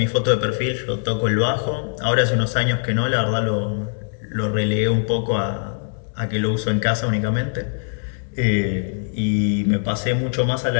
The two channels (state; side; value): silent; right; digital silence